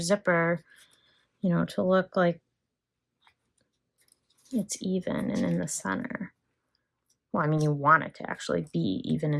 you know, to look like it's even and in the center. Well, I mean, you want it to actually be even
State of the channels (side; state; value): both; identical; correlation 1.00